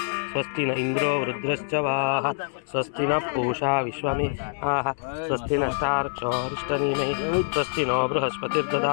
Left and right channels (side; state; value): right; silent; digital silence